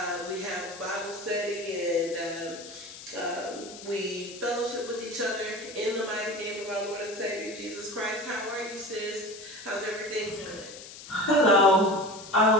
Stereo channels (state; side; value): noise; left; hiss, 15 dB below the sound